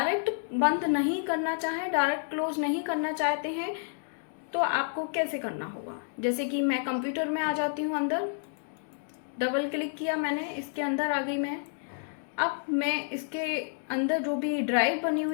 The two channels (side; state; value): right; silent; digital silence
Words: बंद नहीं करना चाहें, डायरेक्ट क्लोज नहीं करना चाहते हैं, तो आपको कैसे करना होगा। जैसे कि मैं कंप्यूटर में आ जाती हूँ, अंदर डबल क्लिक किया मैंने, इसके अंदर आ गई मैं। अब मैं इसके अंदर जो भी ड्राइव बनी